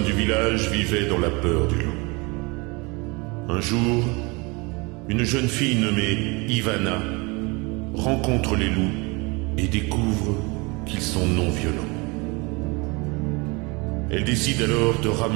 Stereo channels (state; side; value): quieter; left; 27.4 dB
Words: du village vivaient dans la peur du loup. Un jour, une jeune fille nommée Ivana rencontre les loups et découvre qu'ils sont non violents. Elle décide alors de